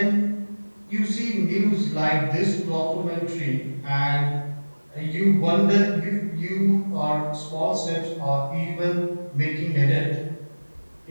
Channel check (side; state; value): both; inverted; correlation -1.00